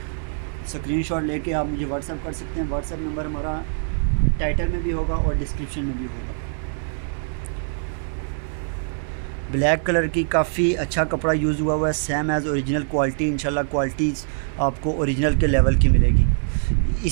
स्क्रीनशॉट लेके आप मुझे व्हाट्सअप कर सकते हैं। व्हाट्सअप नंबर हमारा टाइटल में भी होगा और डिस्क्रिप्शन में भी होगा। ब्लैक कलर की काफ़ी अच्छा कपड़ा यूज़ हुआ है, सेम एज़ ओरिजिनल क्वालिटी। इंशाल्लाह क्वालिटी आपको ओरिजिनल के लेवल की मिलेगी।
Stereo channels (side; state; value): left; silent; digital silence